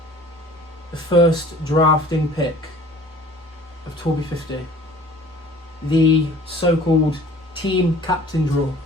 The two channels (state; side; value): normal; both; correlation 0.48